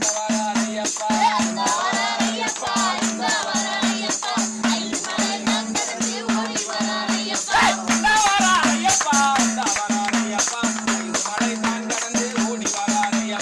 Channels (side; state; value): both; identical; correlation 1.00